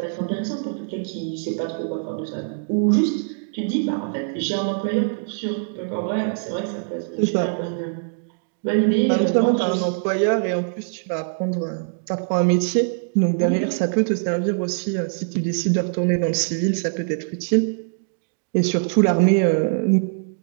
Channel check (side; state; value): left; silent; digital silence